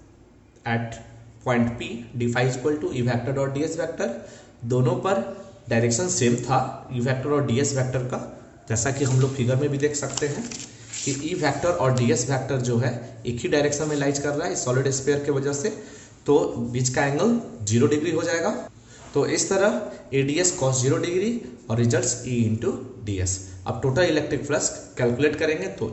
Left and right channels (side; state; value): both; identical; correlation 1.00